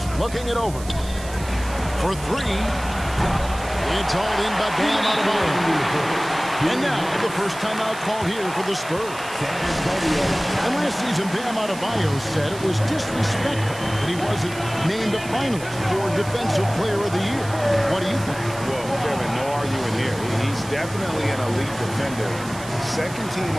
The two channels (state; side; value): noise; right; hiss, 15 dB below the sound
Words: looking it over. For 3. It's all in by Bam Adebayo. And now, the first timeout call here for the Spurs. And last season, Bam Adebayo said it was disrespectful that he wasn't named a finalist for Defensive Player of the Year. What do you think? Well, Kevin, no arguing here. He's definitely an elite defender. Second team